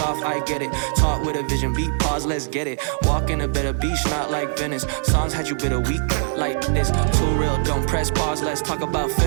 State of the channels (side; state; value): left; silent; digital silence